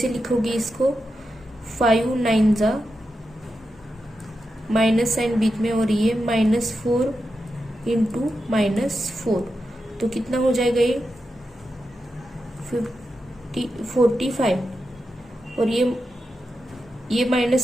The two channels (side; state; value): both; normal; correlation 0.88